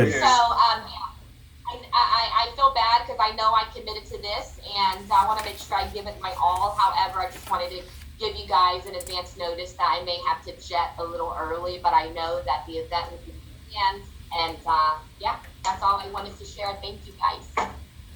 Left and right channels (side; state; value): both; identical; correlation 1.00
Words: So, I feel bad because I know I committed to this, and I want to make sure I give it my all. However, I just wanted to give you guys an advance notice that I may have to jet a little early, but I know that the event will be planned, and yeah, that's all I wanted to share. Thank you, guys.